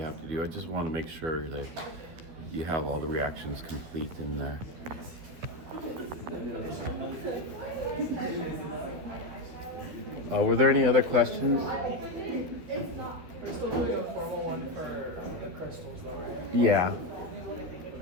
have to do. I just want to make sure that you have all the reactions complete in there. Were there any other questions? We're still doing a formal one for the crystals, though, right? Yeah.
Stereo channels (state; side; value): late; left; 12 ms